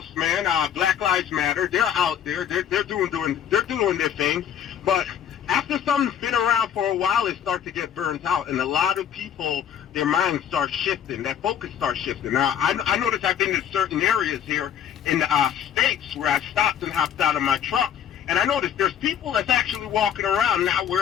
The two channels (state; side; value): quieter; right; 9.3 dB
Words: man, Black Lives Matter, they're out there, they're doing their thing. But after something's been around for a while, it starts to get burnt out, and a lot of people, their minds start shifting, that focus starts shifting. Now, I noticed I've been in certain areas here in the States where I stopped and hopped out of my truck, and I noticed there's people that's actually walking around not